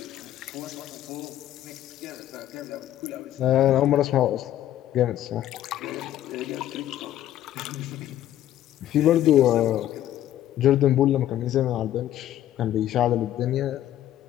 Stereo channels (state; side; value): quieter; right; 12.4 dB